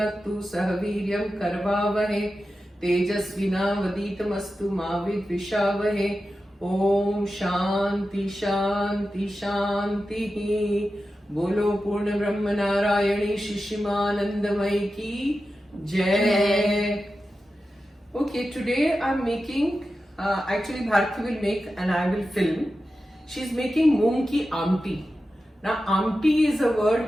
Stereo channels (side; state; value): both; normal; correlation 0.92